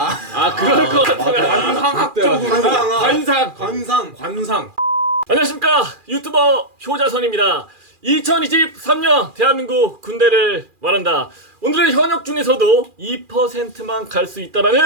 그럴 것 같아요. 관상학적으로 관상. 안녕하십니까, 유튜버 효자선입니다. 2023년 대한민국 군대를 말한다. 오늘은 현역 중에서도 2%만 갈 수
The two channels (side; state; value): left; late; 2.4 ms